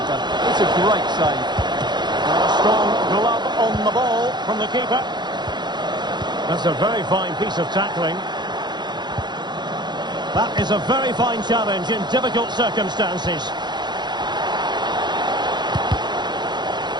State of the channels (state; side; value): late; left; 0.21 ms